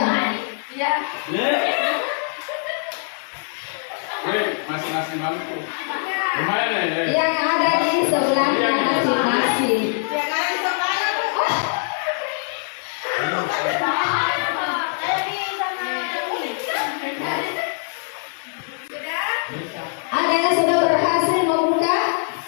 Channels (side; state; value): right; silent; digital silence